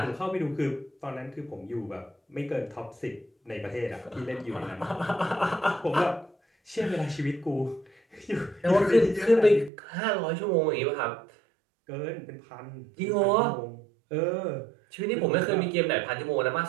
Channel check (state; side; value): drops out; left; at 9.7 s